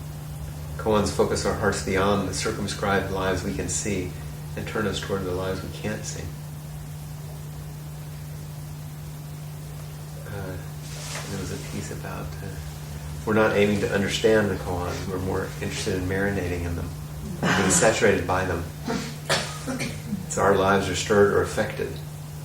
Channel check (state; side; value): identical; both; correlation 1.00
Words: Koans focus our hearts beyond the circumscribed lives we can see and turn us toward the lives we can't see. There was a piece about we're not aiming to understand the koan, we're more interested in marinating in them, being saturated by them. So our lives are stirred or affected.